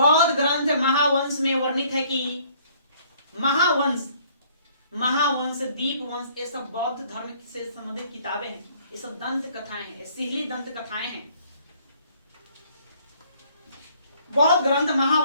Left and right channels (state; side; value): inverted; both; correlation -0.60